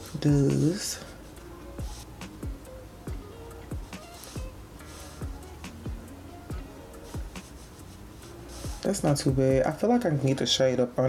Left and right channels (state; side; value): identical; both; correlation 1.00